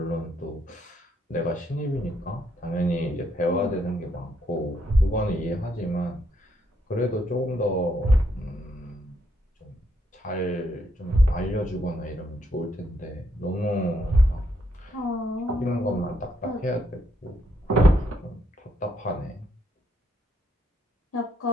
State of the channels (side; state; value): both; normal; correlation 0.74